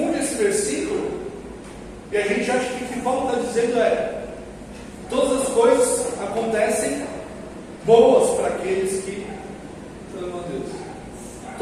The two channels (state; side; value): identical; both; correlation 1.00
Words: esse versículo e a gente acha que o que Paulo está dizendo é: todas as coisas acontecem boas para aqueles que amam a Deus.